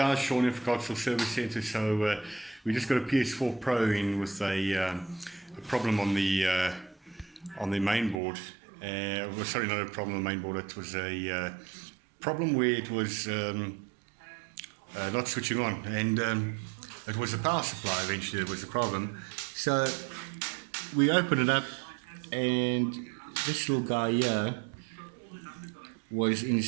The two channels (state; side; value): drops out; left; at 8.2 s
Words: Sean here for Console Service Centre. So we just got a PS4 Pro in with a problem on the main board. Well, sorry, not a problem on the main board. It was a problem where it was not switching on, and it was the power supply. Eventually, it was the problem. So we opened it up, and this little guy here was